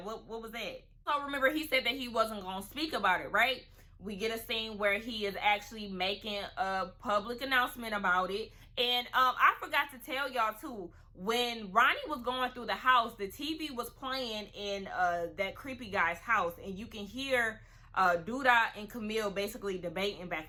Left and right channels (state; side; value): identical; both; correlation 1.00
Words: what was that? So remember, he said that he wasn't going to speak about it, right? We get a scene where he is actually making a public announcement about it. And I forgot to tell y'all too, when Ronnie was going through the house, the TV was playing in that creepy guy's house, and you can hear Douda and Camille basically debating